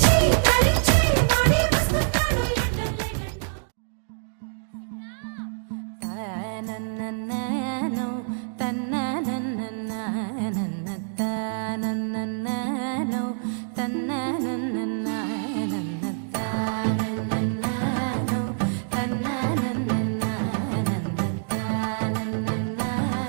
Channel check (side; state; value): left; silent; digital silence